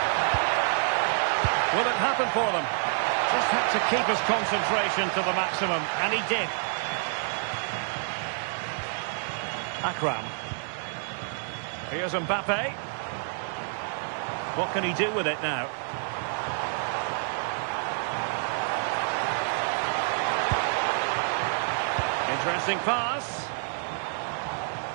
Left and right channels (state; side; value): silent; left; 59 dB below the other